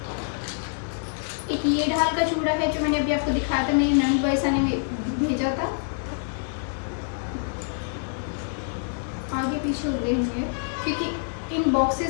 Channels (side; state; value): right; silent; digital silence